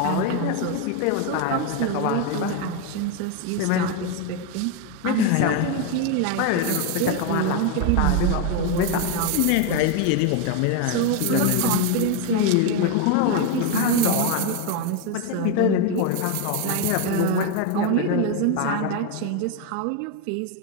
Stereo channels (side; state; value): both; different; correlation 0.02